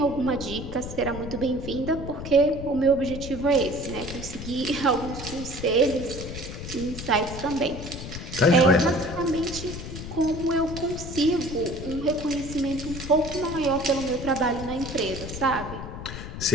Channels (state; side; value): noise; left; rumble, 9 dB below the sound